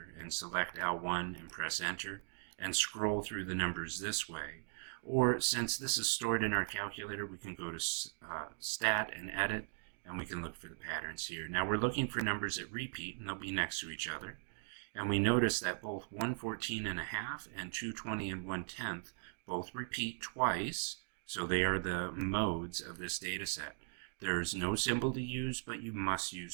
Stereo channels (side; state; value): left; silent; digital silence